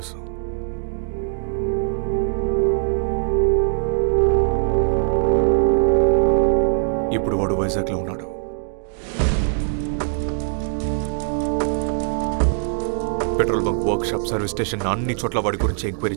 ఇప్పుడు వాడు వైజాగ్లో ఉన్నాడు. Petrol bunk, workshop, service station అన్ని చోట్ల వాడి గురించి ఎంక్వైరీ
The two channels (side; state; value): left; silent; digital silence